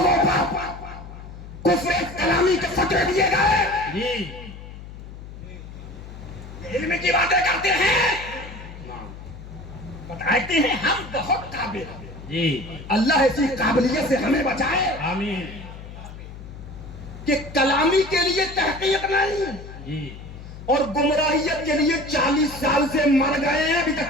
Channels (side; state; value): left; noise; hum, 14 dB below the sound